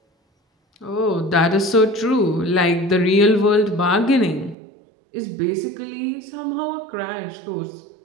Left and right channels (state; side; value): drops out; left; at 4.5 s